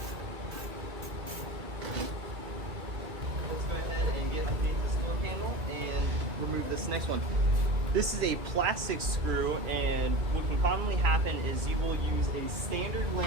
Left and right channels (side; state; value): left; late; 2.3 ms